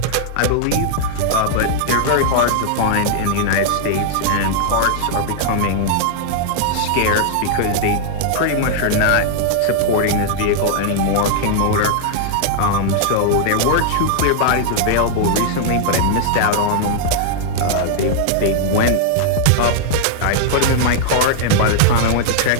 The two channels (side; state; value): both; different; correlation -0.01